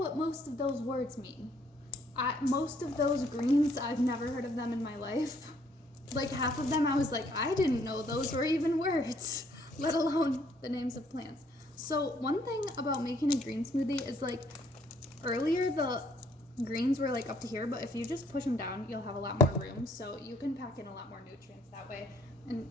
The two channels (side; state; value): both; normal; correlation 0.65